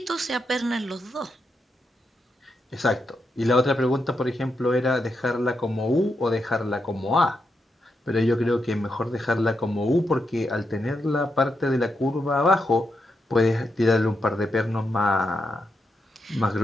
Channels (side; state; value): both; normal; correlation 0.84